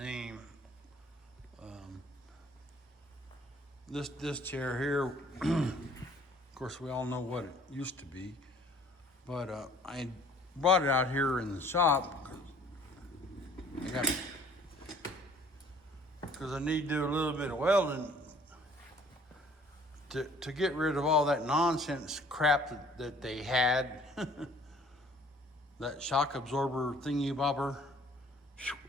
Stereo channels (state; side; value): normal; both; correlation 0.55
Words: Um, this chair here, of course, we all know what it used to be, but I brought it out here in the shop because I need to do a little bit of welding to get rid of all that nonsense crap that they had. That shock absorber thingy bobber,